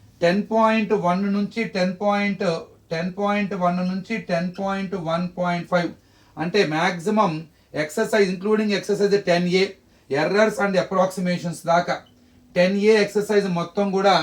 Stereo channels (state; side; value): identical; both; correlation 1.00